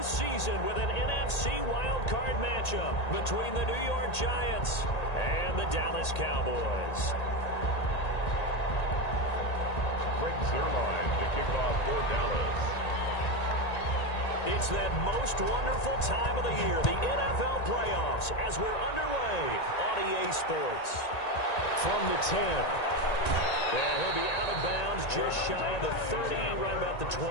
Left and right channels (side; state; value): right; late; 1.9 ms